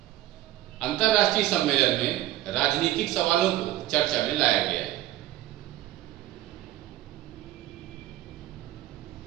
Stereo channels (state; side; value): quieter; left; 14.9 dB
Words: अंतर्राष्ट्रीय सम्मेलन में राजनीतिक सवालों को चर्चा में लाया गया है।